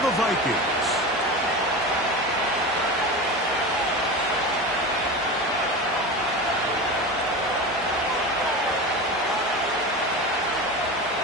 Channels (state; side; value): normal; both; correlation 0.27